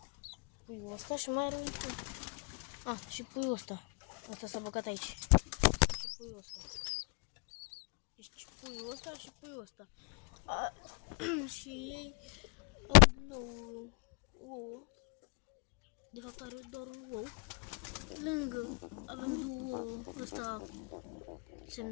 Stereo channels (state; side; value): quieter; right; 33.2 dB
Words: și mai are un pui. Și puiul ăsta. Asta s-a băgat aici. Și puiul ăsta. Deci puiul ăsta și puiul ăsta. Și ei au din nou ouă. De fapt are doar un ou. Lângă avem două ouă. Ăsta